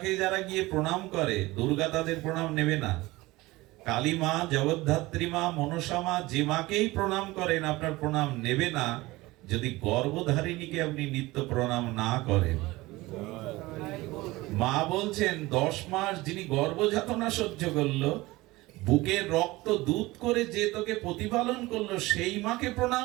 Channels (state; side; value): quieter; left; 20.1 dB